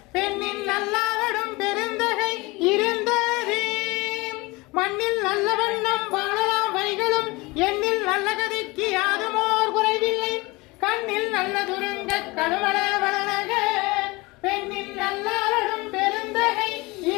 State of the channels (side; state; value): right; quieter; 23.8 dB